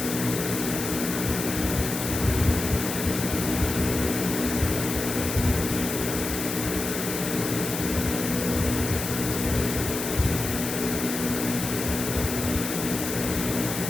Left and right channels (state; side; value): noise; left; hiss, 5 dB below the sound